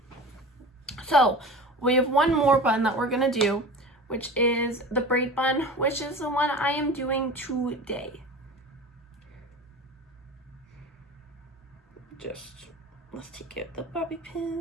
So we have one more bun that we're gonna do, which is the braid bun, which is the one I am doing today. Let's take out the bobby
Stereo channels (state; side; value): normal; both; correlation 0.35